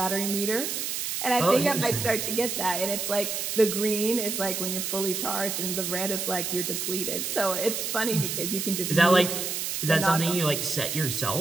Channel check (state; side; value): noise; right; hiss, 2 dB below the sound